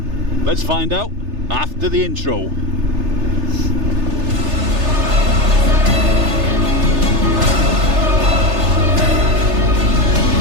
Let's find out after the intro.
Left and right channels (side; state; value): left; late; 3.3 ms